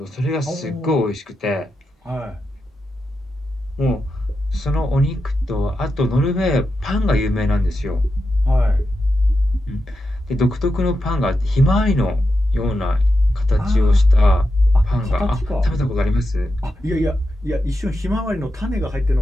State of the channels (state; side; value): normal; both; correlation 0.88